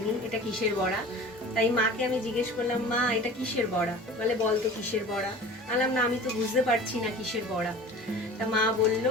এটা কিসের বড়া। তাই মাকে আমি জিজ্ঞেস করলাম, মা এটা কিসের বড়া? বলে বল তো কিসের বড়া। বললাম না, আমি তো বুঝতে পারছি না কিসের বড়া। তা মা বললো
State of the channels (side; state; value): both; normal; correlation 0.40